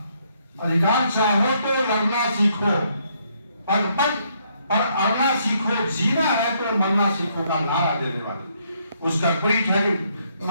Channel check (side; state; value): both; inverted; correlation -0.72